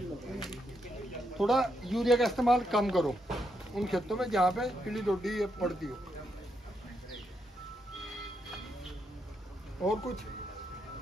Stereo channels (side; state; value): both; normal; correlation 0.80